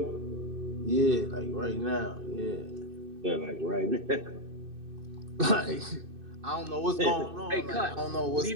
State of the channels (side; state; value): left; late; 2.6 ms